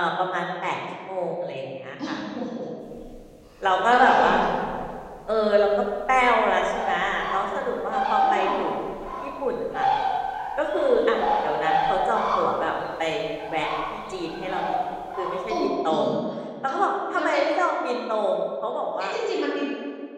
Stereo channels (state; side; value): identical; both; correlation 1.00